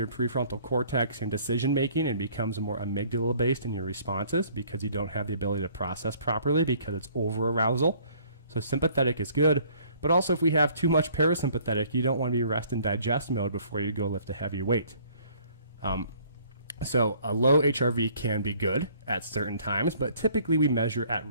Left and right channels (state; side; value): inverted; both; correlation -0.58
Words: prefrontal cortex and decision making, and becomes more amygdala based in your responses because you don't have the ability to process properly because it's over arousal. So sympathetic is good, but also if we have too much parasympathetic, you don't want to be rest and digest mode before you go lift a heavy weight. So a low HRV can be good at certain times, but typically we measure at